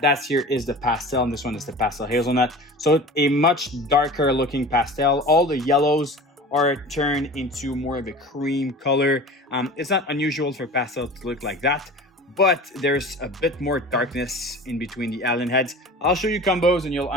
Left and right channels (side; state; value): both; normal; correlation 0.37